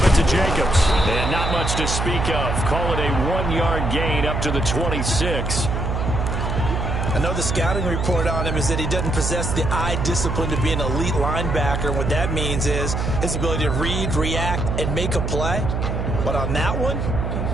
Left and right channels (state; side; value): noise; right; hum, 1 dB below the sound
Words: it to Jacobs. And not much to speak of. Call it a 1-yard gain up to the 26. I know the scouting report on him is that he doesn't possess the eye discipline to be an elite linebacker. And what that means is his ability to read, react, and make a play. But on that one,